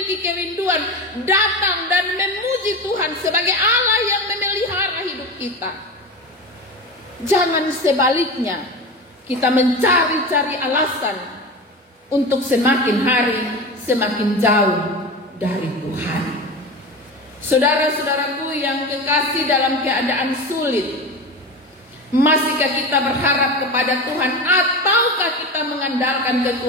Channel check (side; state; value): both; normal; correlation 0.26